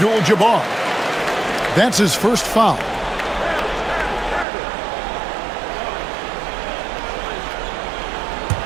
That's his first foul.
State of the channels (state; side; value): drops out; left; at 4.5 s